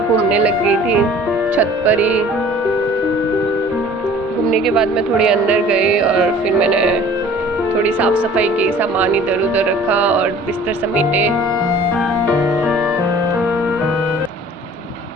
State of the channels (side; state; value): both; normal; correlation 0.49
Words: लग गई थी छत पर ही। घूमने के बाद मैं थोड़ी अंदर गई और फिर मैंने थोड़ी साफ सफाई की, सामान इधर उधर रखा और बिस्तर समेटे।